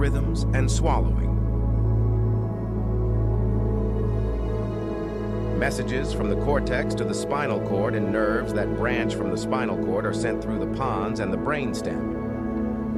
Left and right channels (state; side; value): identical; both; correlation 1.00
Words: and swallowing. Messages from the cortex to the spinal cord and nerves that branch from the spinal cord are sent through the pons and the brainstem.